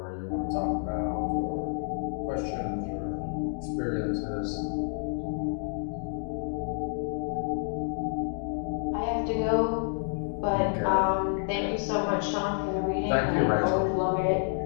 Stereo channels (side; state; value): right; silent; 58 dB below the other